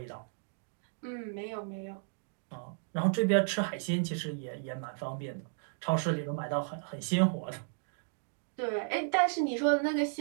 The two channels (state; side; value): silent; left; digital silence